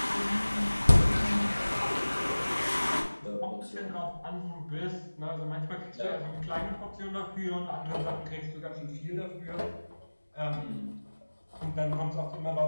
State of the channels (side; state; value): both; inverted; correlation -1.00